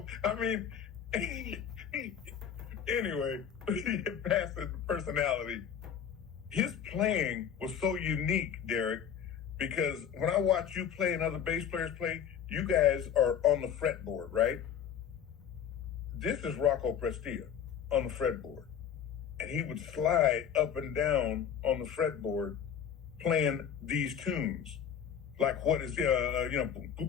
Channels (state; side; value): quieter; right; 8.4 dB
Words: I mean, anyway, past his personality, his playing was so unique, Derek, because when I watch you play and other bass players play, you guys are on the fretboard, right? This is Rocco Prestia on the fretboard. And he would slide up and down on the fretboard playing these tunes. Like what is,